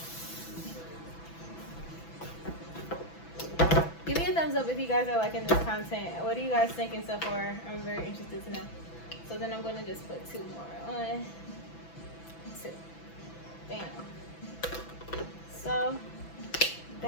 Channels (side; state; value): right; late; 6.0 ms